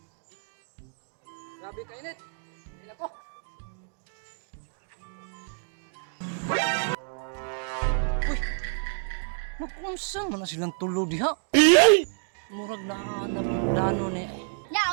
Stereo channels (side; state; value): left; silent; 59 dB below the other